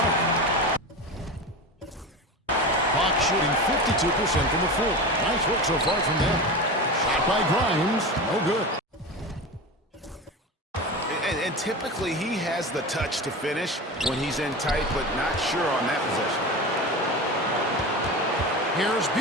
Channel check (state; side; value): normal; both; correlation 0.27